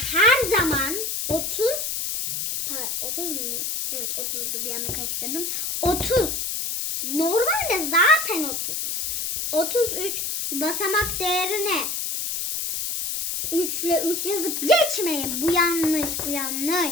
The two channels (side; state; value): left; noise; hiss, 2 dB below the sound